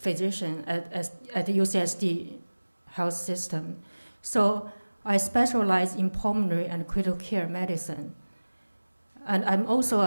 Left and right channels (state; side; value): inverted; both; correlation -1.00